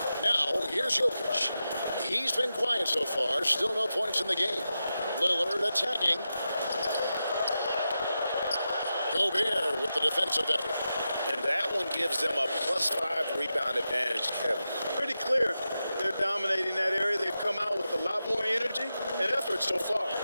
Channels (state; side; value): inverted; both; correlation -0.90